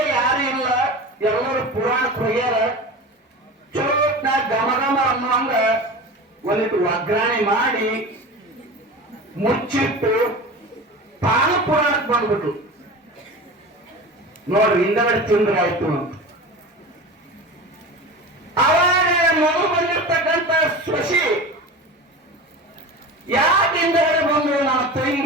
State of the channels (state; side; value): normal; both; correlation 0.32